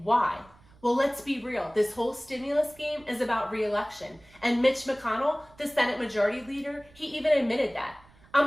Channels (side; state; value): right; noise; rumble, 27 dB below the sound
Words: why? Well, let's be real. This whole stimulus game is about re-election. And Mitch McConnell, the Senate Majority Leader, he even admitted that. I'm